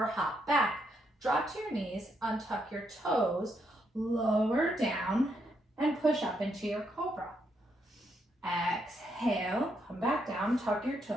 hop back. Drop to your knees, untuck your toes, lower down, and push up into your cobra. Exhale, come back down, tuck your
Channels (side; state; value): both; normal; correlation 0.77